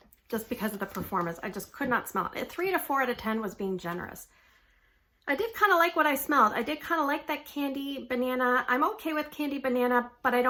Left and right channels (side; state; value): both; identical; correlation 1.00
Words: just because of the performance. I just could not smell it. 3 to 4 out of 10 was being generous. I did kind of like what I smelled. I did kind of like that candy banana. I'm okay with candy banana, but I